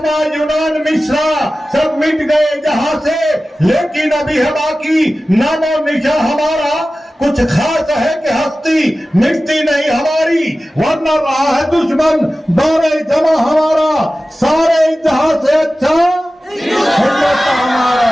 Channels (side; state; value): both; normal; correlation 0.96